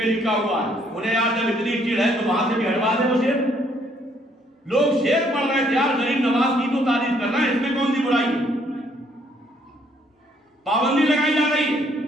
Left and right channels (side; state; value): both; normal; correlation 0.67